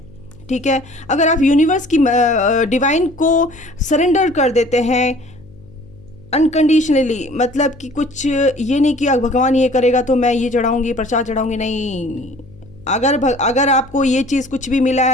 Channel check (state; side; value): noise; left; hum, 23 dB below the sound